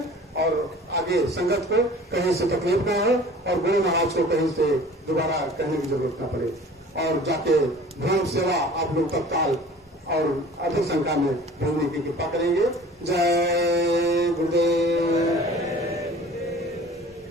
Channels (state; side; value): normal; both; correlation 0.45